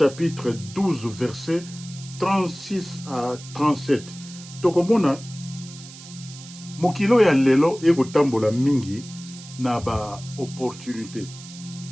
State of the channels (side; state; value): right; noise; hiss, 17 dB below the sound